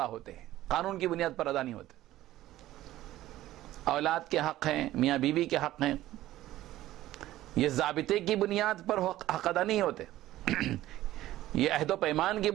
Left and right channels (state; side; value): quieter; left; 14.9 dB